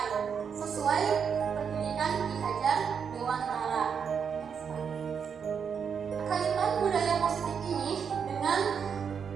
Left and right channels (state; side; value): quieter; left; 6.8 dB